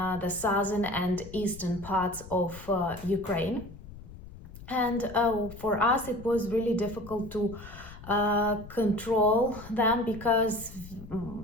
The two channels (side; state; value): left; noise; rumble, 16 dB below the sound